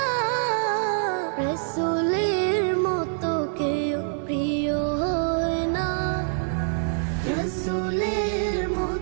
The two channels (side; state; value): left; silent; digital silence